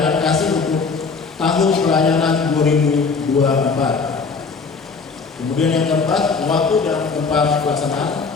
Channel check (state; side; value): quieter; right; 4.8 dB